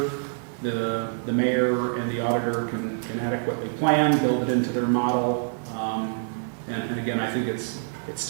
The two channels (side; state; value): left; silent; digital silence